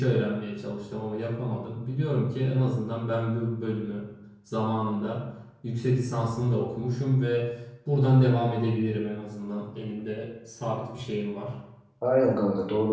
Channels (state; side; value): identical; both; correlation 1.00